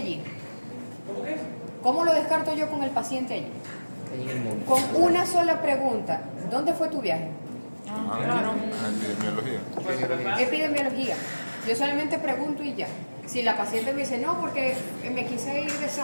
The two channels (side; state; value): both; inverted; correlation -1.00